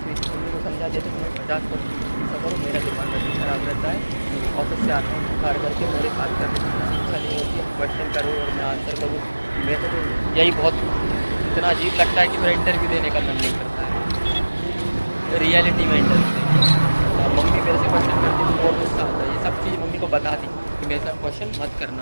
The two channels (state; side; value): inverted; both; correlation -1.00